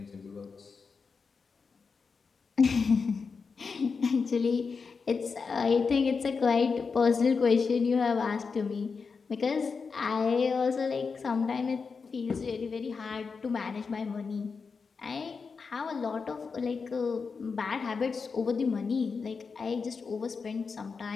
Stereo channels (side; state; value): right; quieter; 5.1 dB